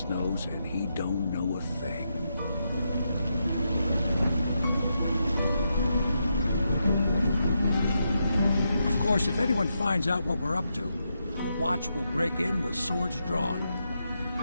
nose, and he don't know a thing. Of course, if anyone finds out what we're up to, the Watch will break in with swords drawn.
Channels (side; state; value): both; inverted; correlation -0.83